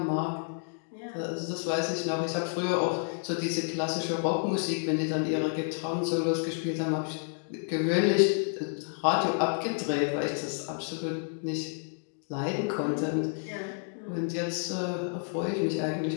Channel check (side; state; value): right; silent; 58 dB below the other